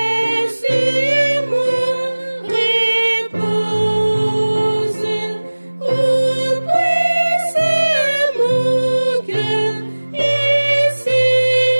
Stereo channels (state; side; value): inverted; both; correlation -1.00